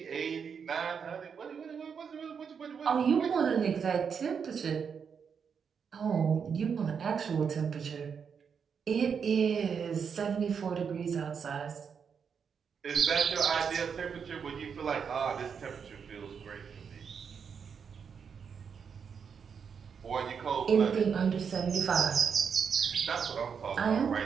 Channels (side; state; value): left; quieter; 6.6 dB